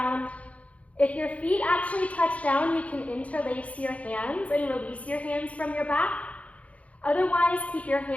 If your feet actually touch down, you can interlace your hands and release your hands from your back. Otherwise, keep your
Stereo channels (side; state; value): right; late; 0.066 ms